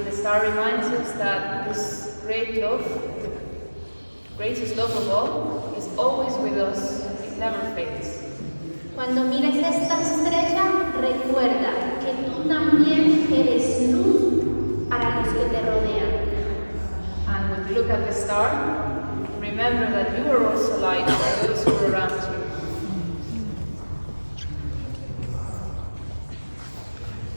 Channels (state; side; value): inverted; both; correlation -1.00